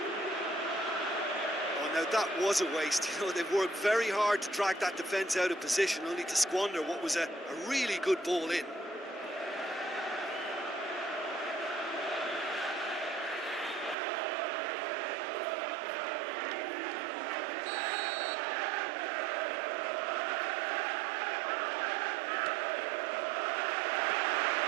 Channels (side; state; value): left; drops out; at 14.0 s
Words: Oh, now that was a waste. You know, they've worked very hard to drag that defence out of position, only to squander what was a really good ball in.